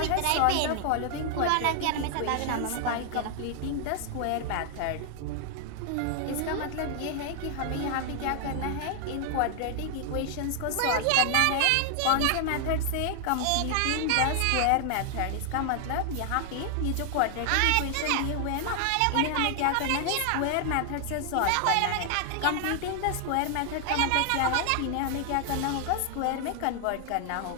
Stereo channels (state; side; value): different; both; correlation 0.00